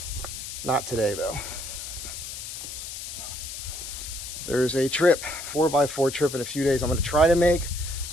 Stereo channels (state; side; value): noise; left; hiss, 8 dB below the sound